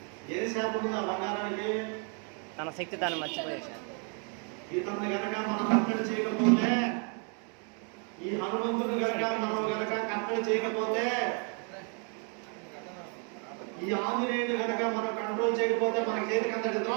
ఏ శాపం ఉంది ఆ బంగారానికి? తన శక్తి తాను మర్చిపోయేశాడు. ఇతన్ని గనక మనం కట్టడి చేయకపోతే, ఈ హనుమంతుడు గనక కట్టడి చేయకపోతే, ఈ ఆంజనేయుడు గనక మనం కంట్రోల్ చేయకపోతే మనకి చేతికి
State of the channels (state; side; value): quieter; left; 39.0 dB